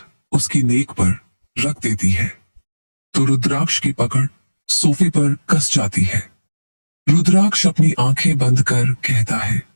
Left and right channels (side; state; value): both; inverted; correlation -1.00